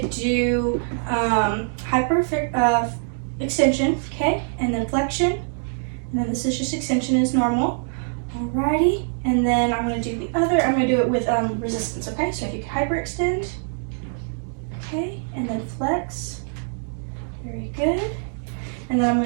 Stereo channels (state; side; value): silent; left; 63 dB below the other